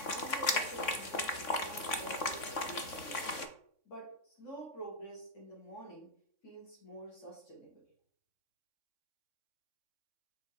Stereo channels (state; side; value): late; right; 3.6 ms